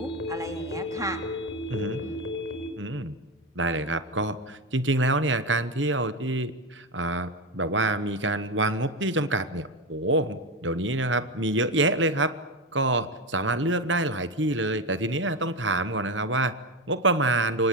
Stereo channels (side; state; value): both; normal; correlation 0.15